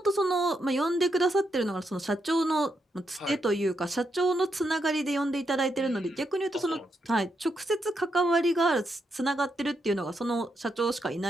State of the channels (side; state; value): both; normal; correlation 0.81